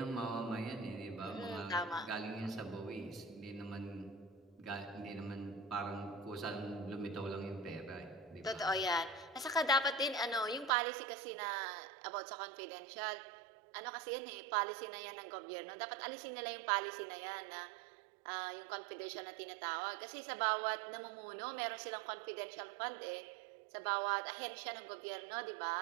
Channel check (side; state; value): left; drops out; at 10.7 s